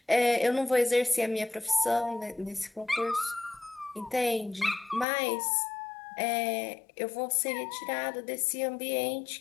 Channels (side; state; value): right; drops out; at 5.1 s